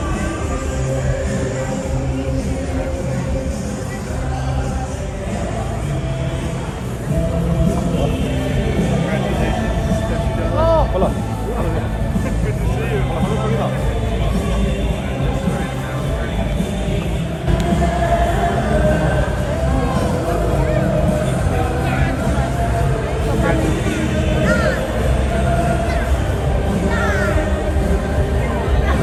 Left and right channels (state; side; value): identical; both; correlation 1.00